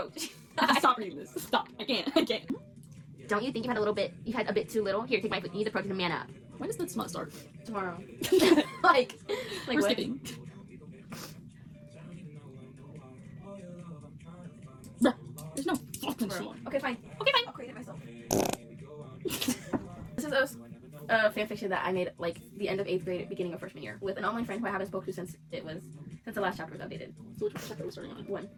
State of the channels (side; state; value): both; identical; correlation 1.00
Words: Stop reading this. Stop. I can't. Don't you think you had a bit too little? Here, take my foot. You need the protein to man up. When does the smut start? Tomorrow. like Like we're what? skipping. Bruh, there's no fucking smut. Okay, fine. I'll create it myself. This is a fanfiction that I made like the end of 8th grade, beginning of freshman year, with an online friend who I haven't spoken to since the last chapter was updated. So which chapter are we starting on? 1.